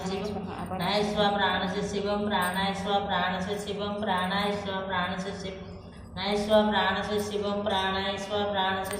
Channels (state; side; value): identical; both; correlation 1.00